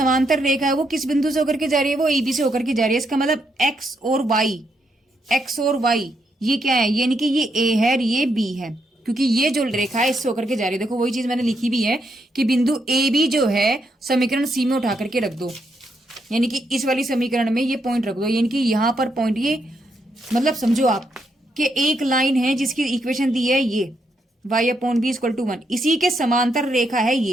रेखा है वो किस बिंदु से होकर के जा रही है, वो ए बी से होकर के जा रही है। इसका मतलब एक्स और वाई ये क्या है, यानी कि ये ए है और ये बी है, क्योंकि ये जो रेखा है इससे होकर के जा रही है। देखो वही चीज मैंने लिखी भी है कि बिंदु ए बी जो है समीकरण सी में उठा करके रख दो, यानी कि इस वाली समीकरण में ये पॉइंट रख दो, यानी कि यहां पर पॉइंट, ये मतलब समझो आप कि एक लाइन है जिसकी इक्वेशन दी है ये y upon B equal to 1, इसी के समांतर रेखा है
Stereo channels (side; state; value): both; normal; correlation 0.78